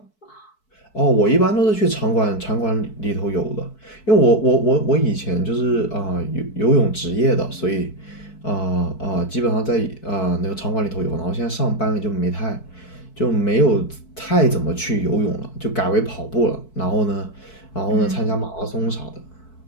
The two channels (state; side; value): late; right; 4.6 ms